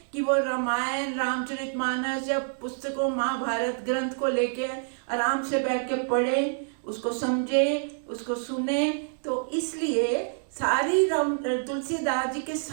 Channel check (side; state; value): left; silent; digital silence